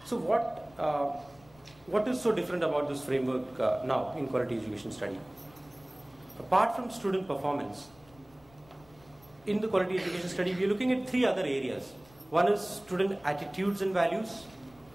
what is so different about this framework now in quality education study? Apart from student performance, in the quality education study, we are looking at 3 other areas. One is student attitudes and values.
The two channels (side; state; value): left; noise; rumble, 27 dB below the sound